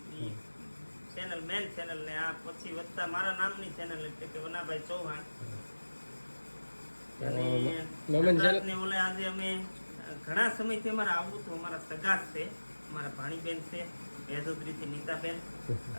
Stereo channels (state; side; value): inverted; both; correlation -1.00